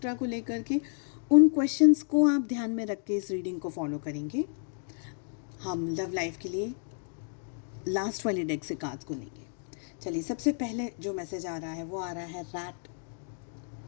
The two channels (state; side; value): silent; right; 57 dB below the other